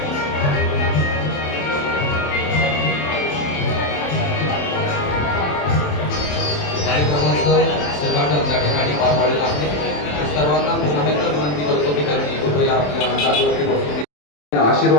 कार्यक्रमाचं उद्घाटन त्या ठिकाणी पार पाडलेलं आहे. सर्वांना पुन्हा एकदा विनंती करतो की त्यांनी कृपया आपल्या जागेवरती बसून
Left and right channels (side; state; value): right; late; 27 ms